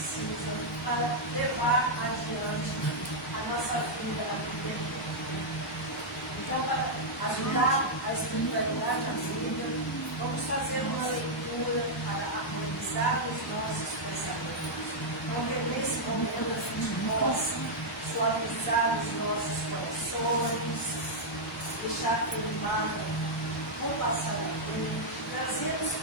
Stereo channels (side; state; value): both; normal; correlation -0.05